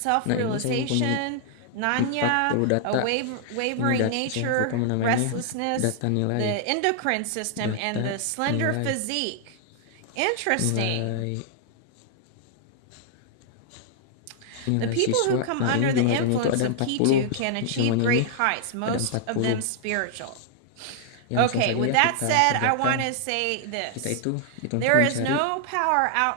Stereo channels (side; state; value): both; different; correlation -0.01